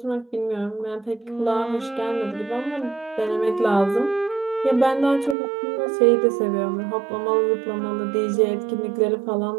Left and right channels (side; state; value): left; drops out; at 5.4 s